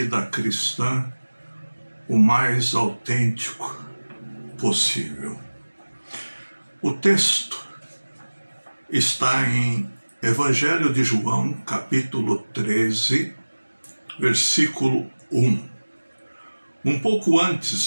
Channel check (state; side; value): inverted; both; correlation -1.00